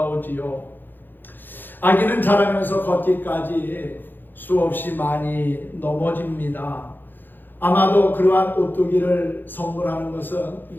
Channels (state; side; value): late; right; 0.092 ms